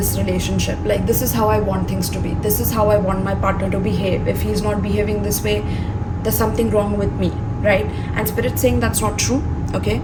relationship. Like, this is how I want things to be, this is how I want my partner to behave. If he's not behaving this way, there's something wrong with me, right? And spirit's saying that's not true. Okay,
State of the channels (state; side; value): identical; both; correlation 1.00